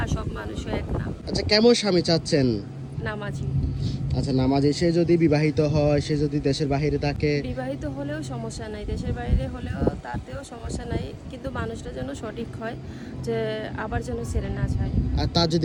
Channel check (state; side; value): identical; both; correlation 1.00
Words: সব মানুষও এক না। আচ্ছা, কেমন স্বামী চাচ্ছেন? নামাজি। আচ্ছা, নামাজে সে যদি বিবাহিত হয়, সে যদি দেশের বাইরে থাকে? বিবাহিত হলেও সমস্যা নাই, দেশের বাইরে হলেও তাতেও সমস্যা নাই, কিন্তু মানুষটা যেন সঠিক হয়, যে আবার যেন ছেড়ে না যায়। আর তার